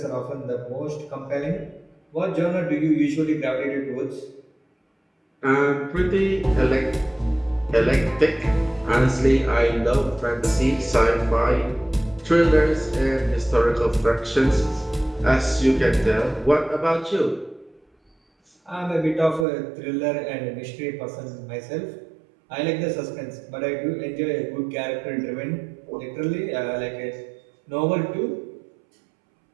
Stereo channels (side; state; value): left; drops out; at 19.5 s